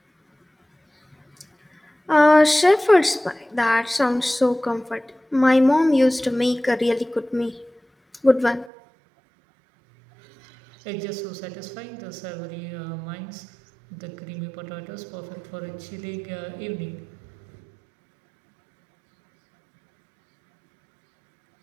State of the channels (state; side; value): drops out; left; at 8.7 s